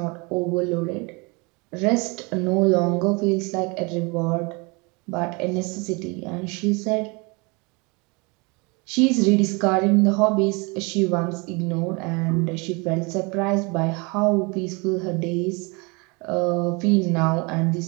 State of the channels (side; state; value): left; quieter; 29.0 dB